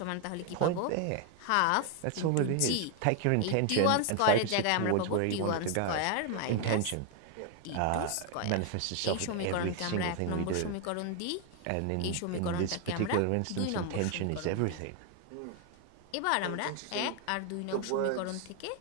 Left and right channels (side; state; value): both; different; correlation 0.01